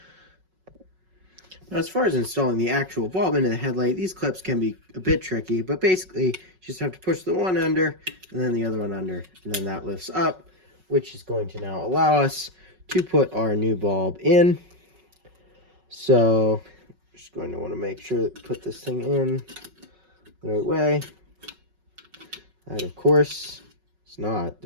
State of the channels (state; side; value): late; left; 5.4 ms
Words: Now, as far as installing the actual bulb into the headlight, these clips can be a bit tricky, but basically, you just have to push the one under and then the other one under, and then that lifts up, which is going to now allow us to put our new bulb in. So, just going to want to make sure that put this thing in the right way. That, of course, is not